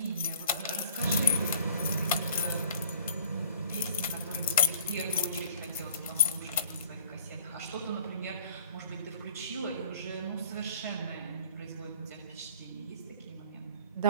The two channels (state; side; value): inverted; both; correlation -0.49